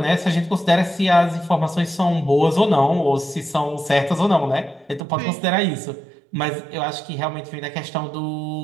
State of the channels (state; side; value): drops out; left; at 5.0 s